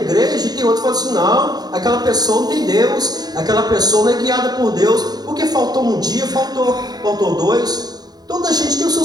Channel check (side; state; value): left; late; 0.19 ms